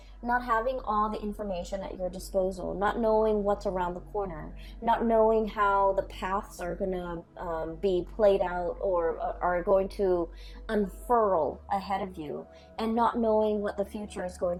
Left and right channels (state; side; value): identical; both; correlation 1.00